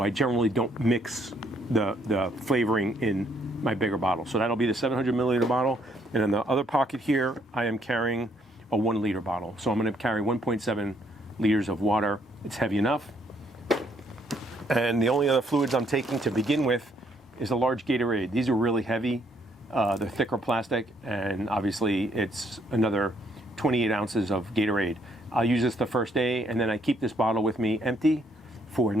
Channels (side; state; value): both; normal; correlation 0.69